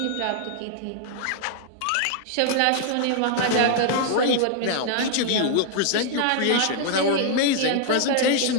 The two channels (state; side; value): different; both; correlation 0.00